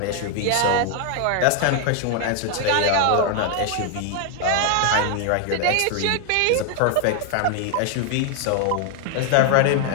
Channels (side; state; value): both; different; correlation 0.00